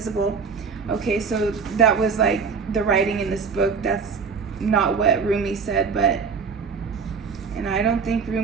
Okay, so that was like the writing in this book. That's not what Rumi said, and I don't think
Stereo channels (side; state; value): left; quieter; 5.5 dB